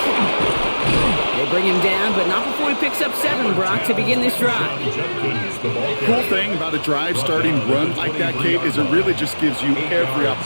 They bring him down, but not before he picks up 7, Brock, to begin this drive. Cool thing about a drive starting run like that, Kate, is it really just gives you every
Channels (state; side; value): inverted; both; correlation -1.00